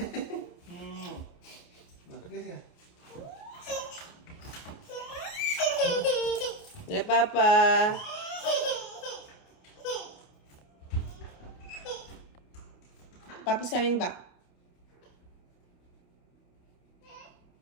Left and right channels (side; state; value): right; late; 28 ms